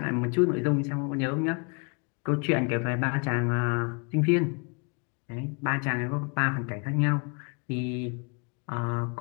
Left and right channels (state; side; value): quieter; right; 35.6 dB